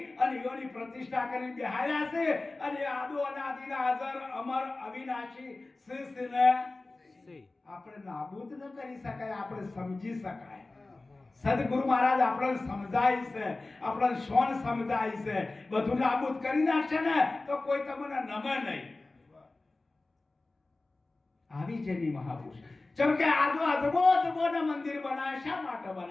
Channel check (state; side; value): quieter; right; 3.2 dB